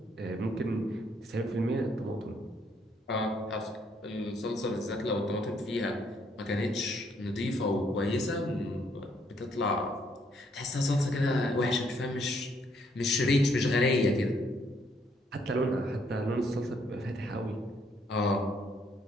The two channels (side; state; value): both; normal; correlation 0.70